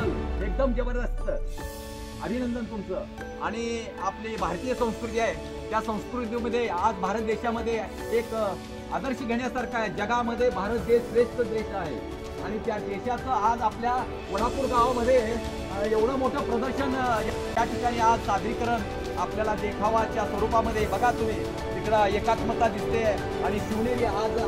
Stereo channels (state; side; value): identical; both; correlation 1.00